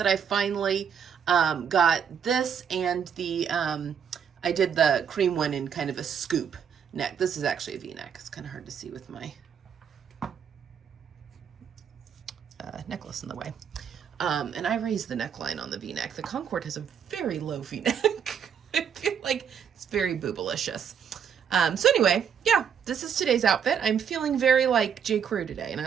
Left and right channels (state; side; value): quieter; left; 7.7 dB